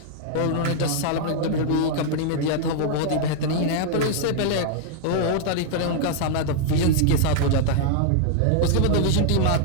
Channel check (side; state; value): both; different; correlation -0.01